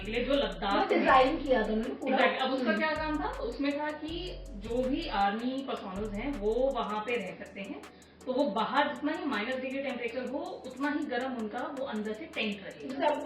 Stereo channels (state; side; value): identical; both; correlation 1.00